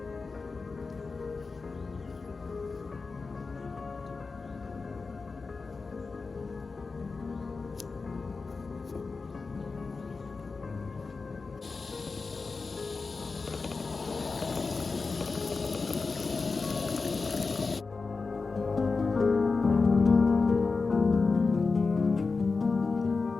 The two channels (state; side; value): quieter; right; 4.3 dB